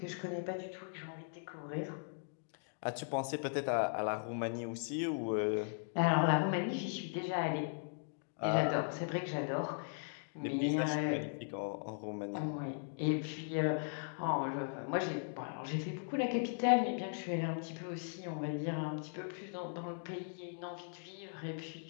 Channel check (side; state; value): right; silent; digital silence